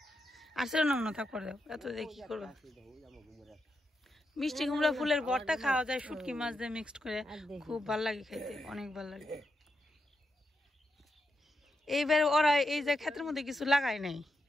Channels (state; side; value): normal; both; correlation 0.84